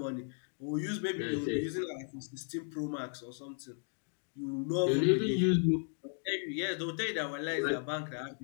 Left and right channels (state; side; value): silent; right; 54 dB below the other